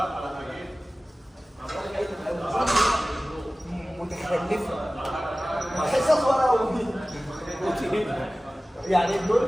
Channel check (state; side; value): normal; both; correlation 0.97